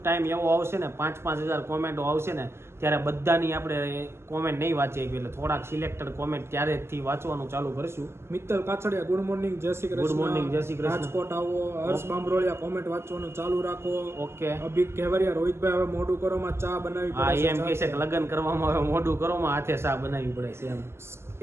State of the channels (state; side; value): late; left; 0.12 ms